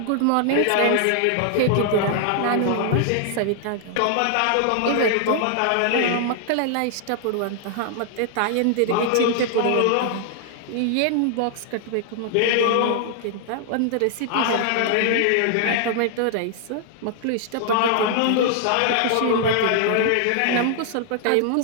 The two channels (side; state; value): both; different; correlation 0.00